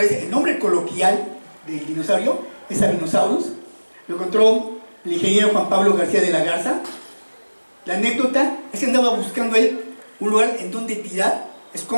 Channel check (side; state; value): both; inverted; correlation -1.00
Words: vez el nombre coloquial del dinosaurio, es Sabinosaurus. Lo encontró el ingeniero Juan Pablo García de la Garza. La anécdota es que andaba buscando él un lugar en donde tirar